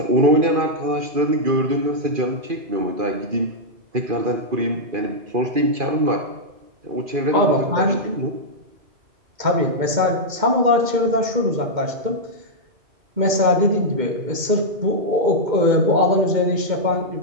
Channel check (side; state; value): left; late; 2.1 ms